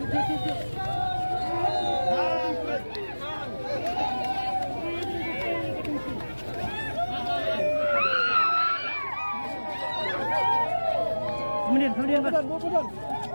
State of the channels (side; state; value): both; inverted; correlation -1.00